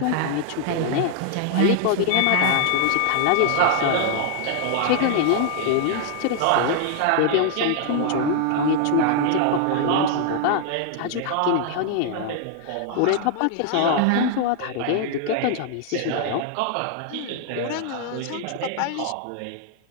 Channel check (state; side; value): different; both; correlation 0.00